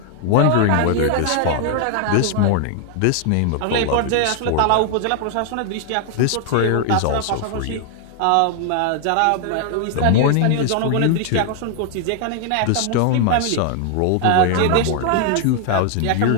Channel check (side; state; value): both; different; correlation 0.00